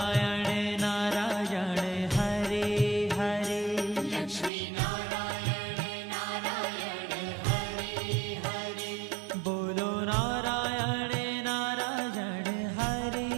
नारायण हरे हरे लक्ष्मी नारायण नारायण हरि हरि बोलो नारायण नारायण हरे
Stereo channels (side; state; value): left; drops out; at 4.5 s